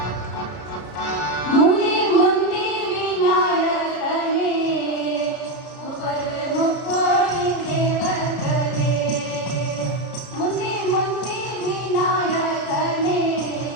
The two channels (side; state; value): right; late; 33 ms